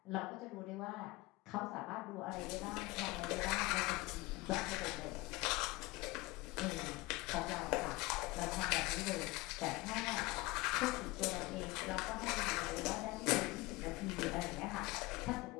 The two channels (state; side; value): quieter; right; 21.8 dB